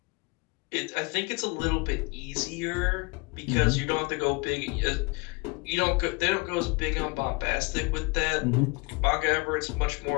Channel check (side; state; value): right; quieter; 28.1 dB